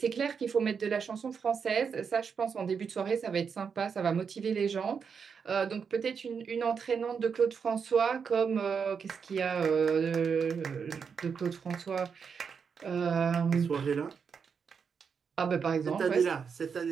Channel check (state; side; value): quieter; left; 6.3 dB